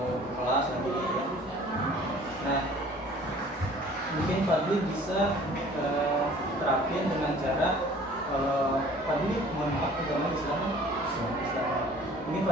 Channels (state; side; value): normal; both; correlation 0.50